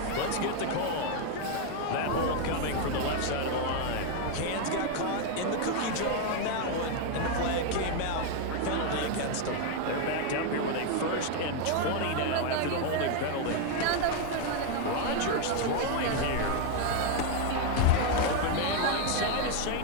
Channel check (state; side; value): different; both; correlation 0.01